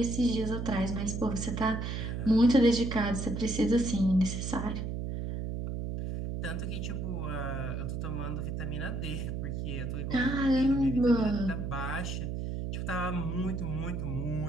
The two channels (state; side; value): noise; right; hum, 3 dB below the sound